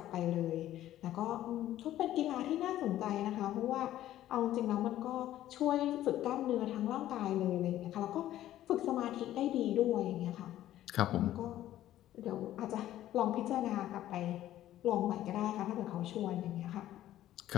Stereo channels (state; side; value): quieter; right; 13.3 dB